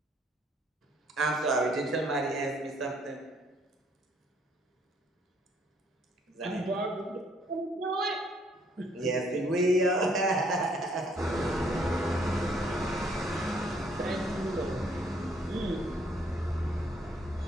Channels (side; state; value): both; normal; correlation 0.66